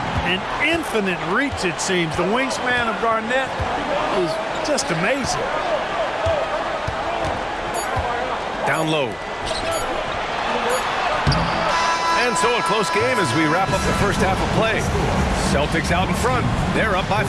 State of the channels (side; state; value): both; identical; correlation 1.00